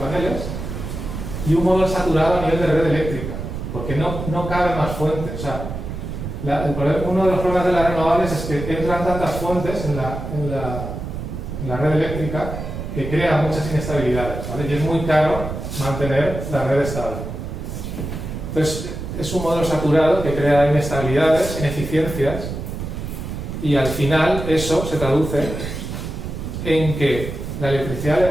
y un modelo saturado a nivel de red eléctrica, porque no caben más fuentes. O sea, uno de los problemas de las renovables es que entran tantas fuentes en la red eléctrica que crea muchas inestabilidades, ¿vale? Y es muy caro mantener la red estable. Entonces, es un modelo saturado que crea inestabilidades, ineficiencias, y al final eso se traduce en que la electricidad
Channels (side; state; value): right; noise; rumble, 6 dB below the sound